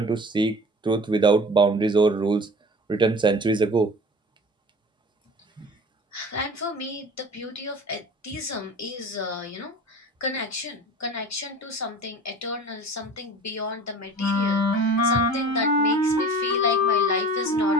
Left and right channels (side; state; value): both; normal; correlation 0.39